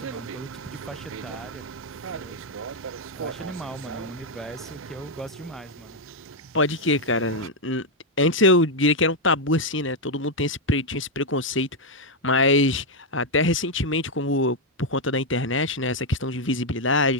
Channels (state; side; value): normal; both; correlation 0.01